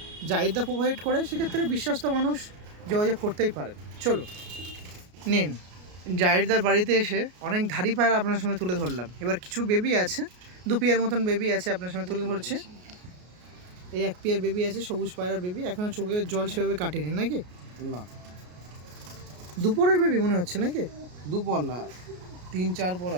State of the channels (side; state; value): left; late; 33 ms